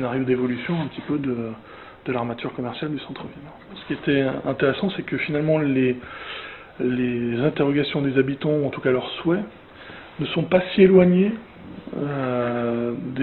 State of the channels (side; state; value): both; identical; correlation 1.00